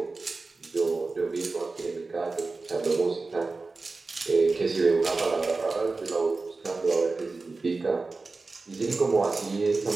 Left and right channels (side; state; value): left; quieter; 3.7 dB